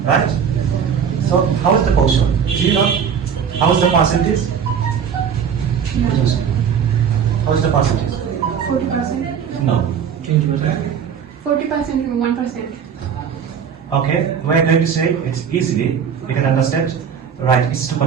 right? So, how is the portion? Do you know how is the percentage? How is the percentage? 40%. No. 40% and 1%. Okay, we are going to say it's easily, you can understand, right, it's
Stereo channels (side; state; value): left; quieter; 7.4 dB